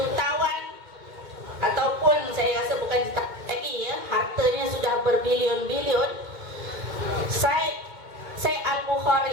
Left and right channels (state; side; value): late; left; 2.1 ms